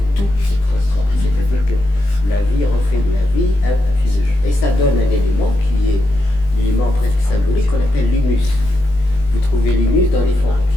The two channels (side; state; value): right; late; 20 ms